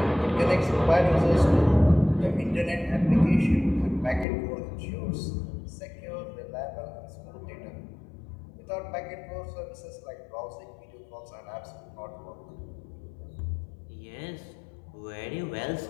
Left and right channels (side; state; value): right; drops out; at 4.2 s